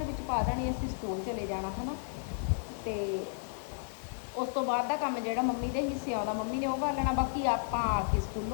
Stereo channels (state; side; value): silent; right; digital silence